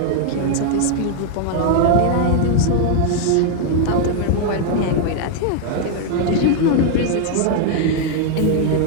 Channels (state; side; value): different; both; correlation 0.00